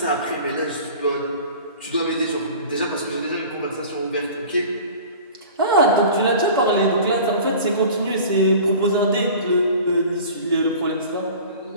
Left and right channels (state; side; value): inverted; both; correlation -0.41